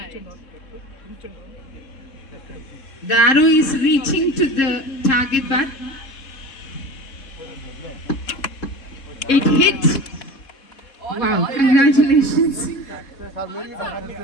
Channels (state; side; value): late; right; 3.7 ms